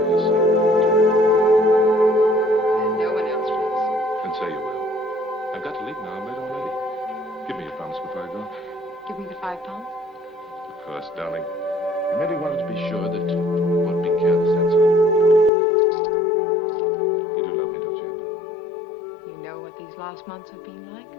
your sake. Say you will. I've got to leave now. I'm late already. Give me your promise before I go. Give me the £5? Of course, darling. I merely wanted to be sure that you won't be careless, that's all. You do love me, don't you, Amber? You know what these last months have been like?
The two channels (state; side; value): drops out; right; at 15.5 s